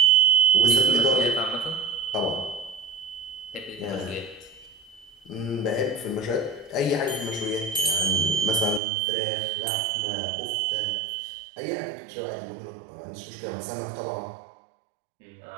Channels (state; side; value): drops out; left; at 8.8 s